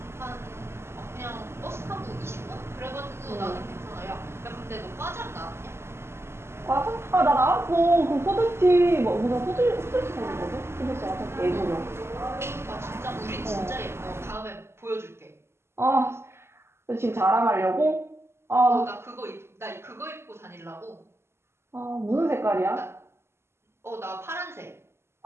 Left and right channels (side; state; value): left; late; 0.12 ms